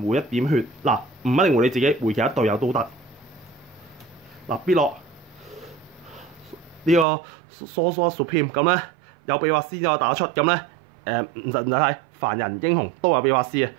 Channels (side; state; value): left; drops out; at 7.1 s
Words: 回1點血。嗱，唔一定回你自己，回其他隊友都得。嗱，必落呢個 Sorcerer Supreme 咁咧，有秘法師就可以打得出。咁咧唔使睇，凡人英雄都有秘法師嘅，